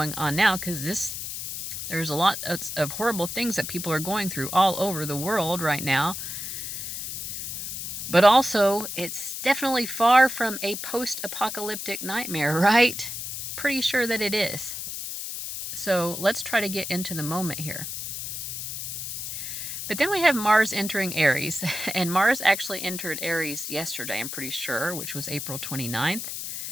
on now, because there's a lot of horrible things that people are going through all over the world right now. But also, it's definitely far from a post-apocalyptic nightmare, right? Pretty sure that it is. So let's try to get into the moment here. But then we have Mars entering Aries. And Mars actually entered Aries yesterday, I'm pretty sure, which was April 29th.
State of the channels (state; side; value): noise; left; hiss, 6 dB below the sound